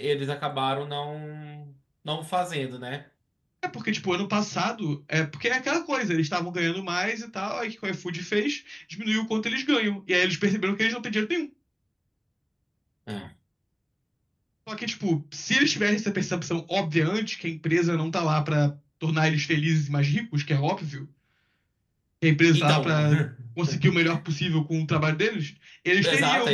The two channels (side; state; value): both; identical; correlation 1.00